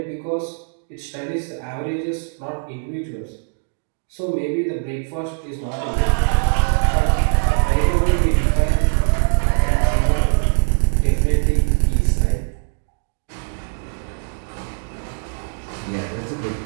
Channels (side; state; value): left; silent; digital silence